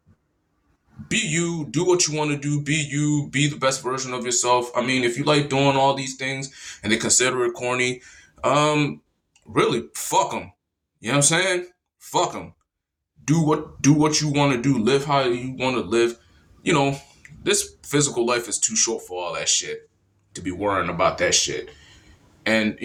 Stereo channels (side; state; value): both; identical; correlation 1.00